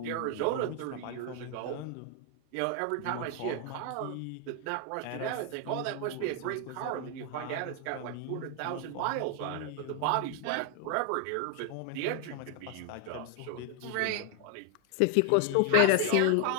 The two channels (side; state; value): both; different; correlation 0.00